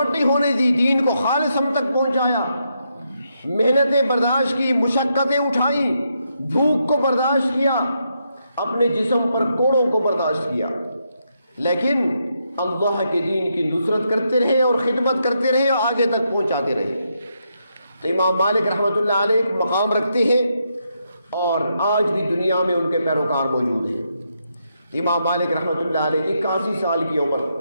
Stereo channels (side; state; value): both; inverted; correlation -0.80